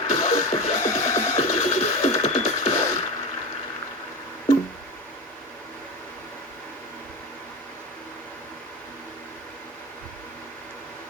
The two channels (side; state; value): both; normal; correlation 0.23